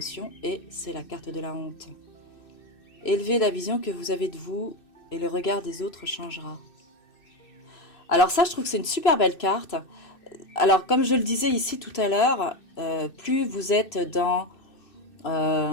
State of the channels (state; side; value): late; right; 2.6 ms